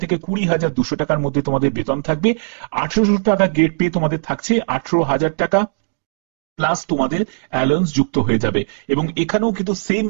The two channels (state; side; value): silent; left; digital silence